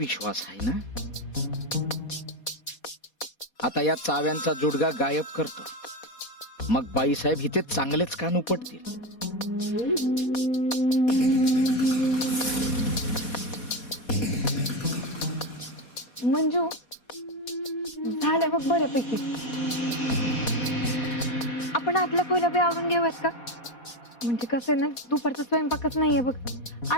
आहे ना. आता या चाव्यांचा जुडगा गायब करतो, मग बाईसाहेब इथे चांगलेच कान उपटतील. मंजू, झालं बघ बऱ्यापैकी. आपण आतला खोल्या बी आवरून घेऊयात का? म्हणजे कसं आहे ना, दुपारचा स्वयंपाकच नाहीये बघ.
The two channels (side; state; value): right; late; 4.2 ms